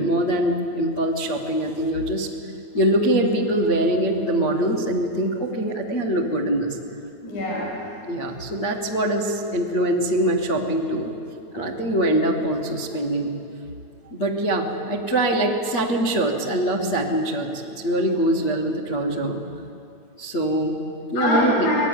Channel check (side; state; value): right; late; 9.1 ms